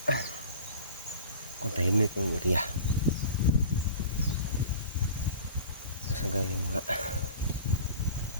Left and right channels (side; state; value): both; inverted; correlation -0.40